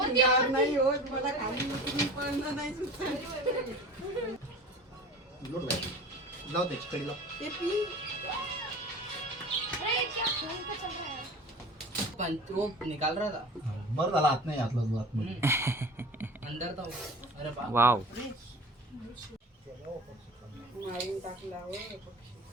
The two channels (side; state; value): both; normal; correlation 0.38